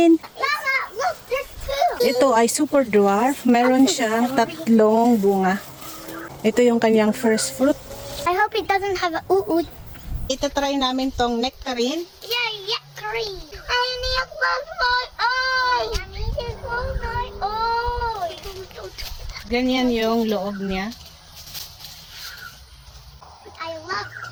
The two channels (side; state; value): both; identical; correlation 1.00